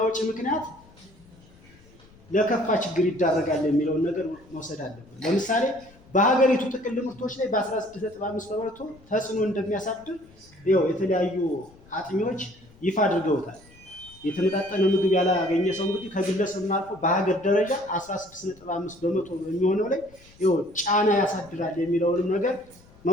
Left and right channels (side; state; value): left; noise; rumble, 26 dB below the sound